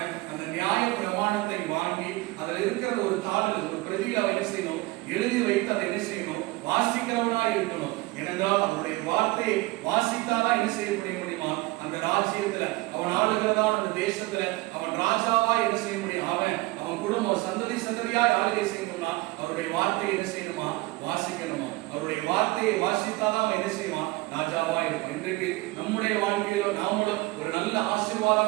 அந்த நியாய பிரமாணத்தை வாங்கி அதில் இருக்கிற ஒரு தாளில் ஒரு பிரதியில் அவன் என்ன செய்யணும், எழுதி வைத்து அதை என்ன செய்யணும், வாசிக்கிறவனா இருக்கணும். ஏனென்றால் அவருடைய வார்த்தையை வாசித்தாதான் என்ன செய்ய முடியுமா, அந்த ராஜ்யத்துல அவன் ஆளுகிறதான அந்த தேசத்துல அவன் ராஜாவா என்ன செய்ய முடியும். அவன் குடும்பம் சந்ததி சந்ததியாய் ஆளுகை செய்யணும்னா அவருடைய வார்த்தையை என்ன செய்யணுமா, வாசிக்கணுமா. அவருடைய வார்த்தையை வாசித்தாதான் அவன் என்ன செய்வான், ராஜாவா இருக்கும். இன்றைக்கு நம்முடைய வாழ்க்கையில நாமளும் ஒரு நல்ல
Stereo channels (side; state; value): left; quieter; 21.4 dB